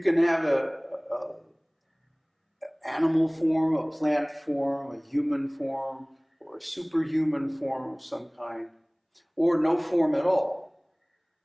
can have a animal form, a plant form, a human form, or a superhuman form of some kind, or no form at all.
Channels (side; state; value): both; identical; correlation 1.00